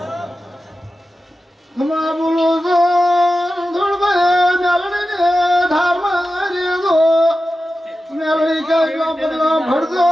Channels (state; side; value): normal; both; correlation 0.93